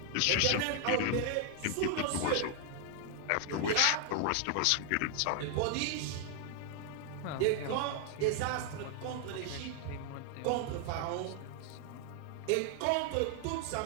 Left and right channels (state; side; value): different; both; correlation 0.00